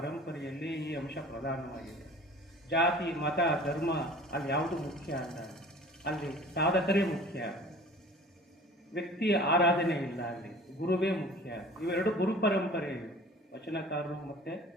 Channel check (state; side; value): normal; both; correlation 0.45